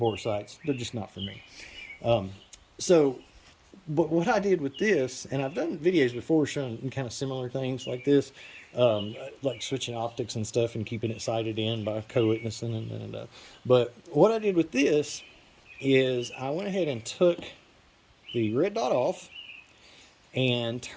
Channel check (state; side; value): identical; both; correlation 1.00